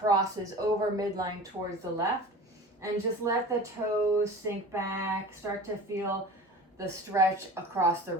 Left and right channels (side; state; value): both; normal; correlation 0.37